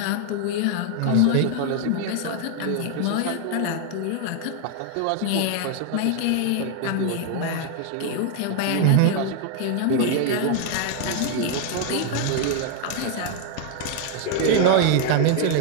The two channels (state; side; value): different; both; correlation 0.00